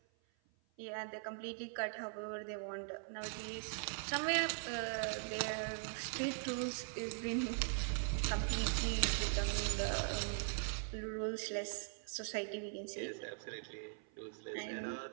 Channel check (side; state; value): left; silent; 50 dB below the other